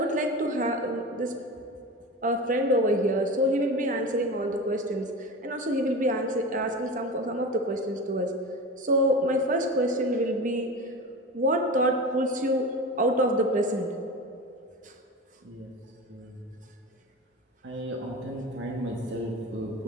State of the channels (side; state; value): both; normal; correlation 0.29